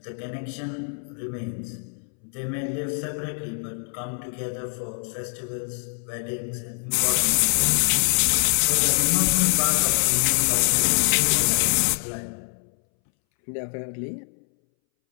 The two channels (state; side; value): silent; right; 62 dB below the other